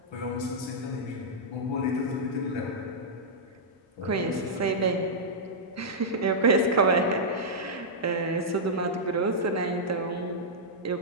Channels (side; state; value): both; normal; correlation -0.10